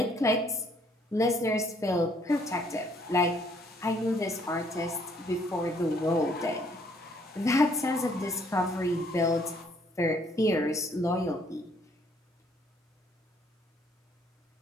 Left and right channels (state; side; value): normal; both; correlation 0.65